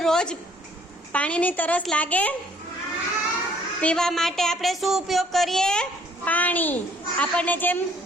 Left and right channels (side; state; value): both; normal; correlation 0.61